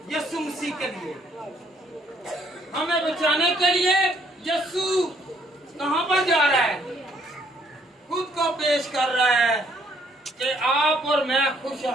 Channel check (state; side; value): normal; both; correlation 0.66